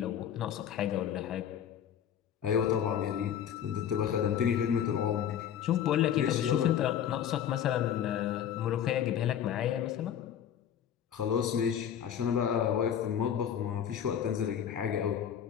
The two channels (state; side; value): quieter; right; 9.2 dB